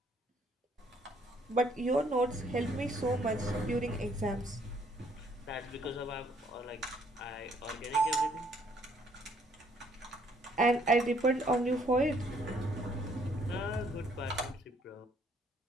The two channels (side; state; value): both; normal; correlation 0.65